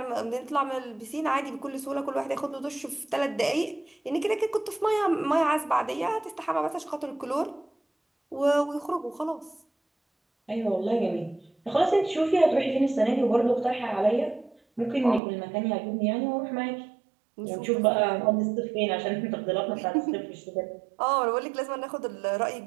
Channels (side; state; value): left; drops out; at 15.2 s